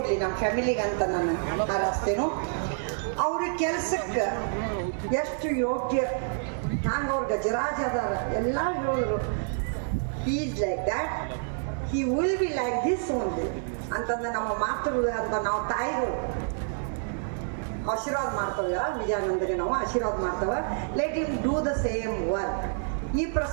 ನಮ್ಮ ಫ್ಯಾಮಿಲಿಗೆ ಅಂತ ನಾನು ಹಾರೈಸ್ತೇನು. ಅವ್ರ ಕೆಲಸಕ್ಕೆ ಎಷ್ಟು ಯೋಗ್ಯ, ಹ್ಯಾಂಗೆ ಅವ್ರ ಗಜರಾಜ ಅದಾರ ಎಲ್ಲ ಹೇಳಿದ್ರು. He is like that, he will be like this only ಅಂತಂದ್ರೆ ನಮ್ಮ ಮಾತೃಗಳು ಅಂತ ನಾವು ತಾಯಿಗಳು ಆಶೀರ್ವಾದ ಮಾಡ್ತೇವೆ. ವಿಜಯಾನಂದಗೆ ನಾವು ಆಶೀರ್ವಾದ ಮಾಡ್ತೇವೆ. Let him do the same work. ಈ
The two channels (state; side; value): silent; left; 59 dB below the other